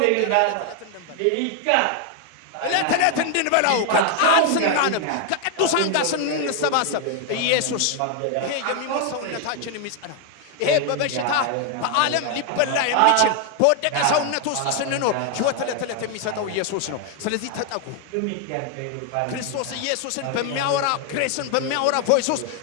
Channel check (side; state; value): both; different; correlation 0.00